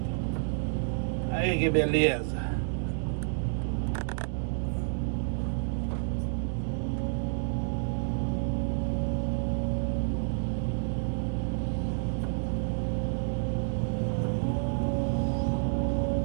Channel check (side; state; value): left; silent; digital silence